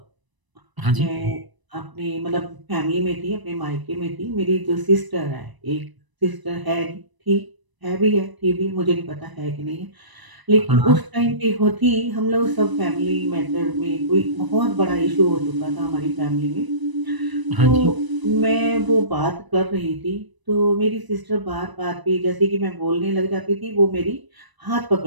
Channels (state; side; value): late; left; 1.0 ms